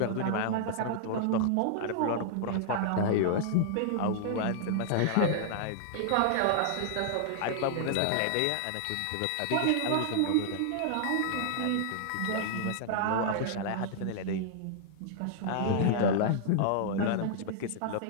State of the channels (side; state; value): both; different; correlation -0.01